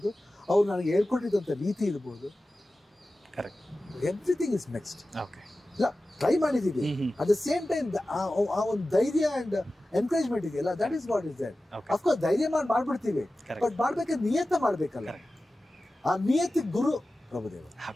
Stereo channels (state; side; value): normal; both; correlation 0.95